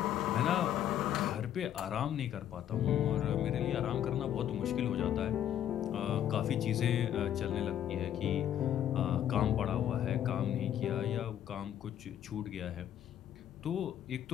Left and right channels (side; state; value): right; quieter; 10.7 dB